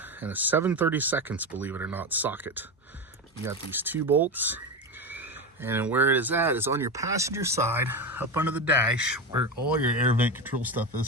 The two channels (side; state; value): both; normal; correlation 0.18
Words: and a 7/32, believe it or not, socket. You got these 2 bolts. And where it is at is on your passenger side, up under the dash, where all your air vent control stuff